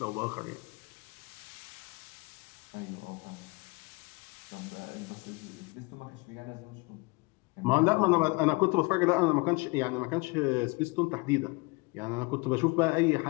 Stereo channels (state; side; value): quieter; right; 27.7 dB